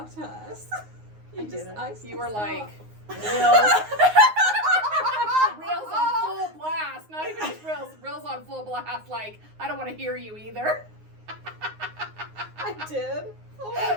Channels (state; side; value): late; left; 9.6 ms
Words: to us. I didn't. You were like Reels. reels on full blast. Not even just reels. Reels on full blast. Like, I don't want to hear you either. I did. Oh my